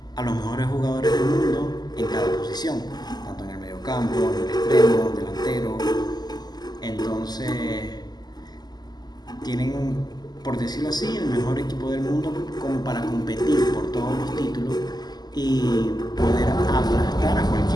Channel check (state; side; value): late; right; 0.20 ms